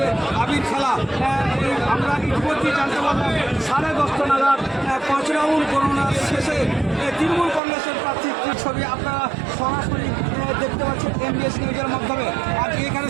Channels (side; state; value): left; drops out; at 7.6 s